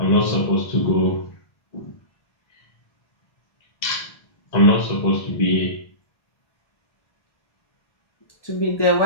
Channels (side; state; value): right; late; 1.3 ms